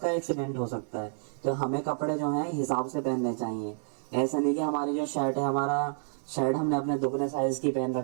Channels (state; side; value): silent; left; digital silence